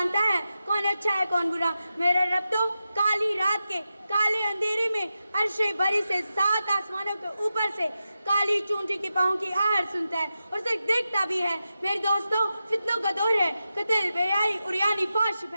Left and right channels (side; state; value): both; inverted; correlation -0.90